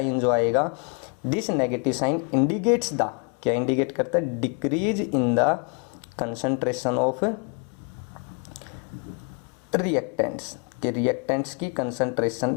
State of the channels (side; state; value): right; quieter; 36.3 dB